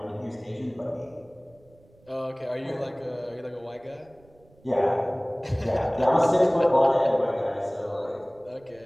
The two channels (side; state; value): right; noise; rumble, 29 dB below the sound